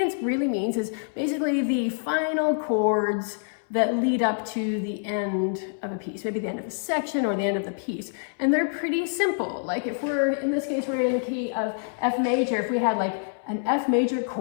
really means is basically the final chords that lead up to the end of a piece, maybe the end of a section or the end of the piece. And they're pretty simple. Like if we're, in this case, we're in the key of F major, if we had like an F major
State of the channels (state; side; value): silent; right; 61 dB below the other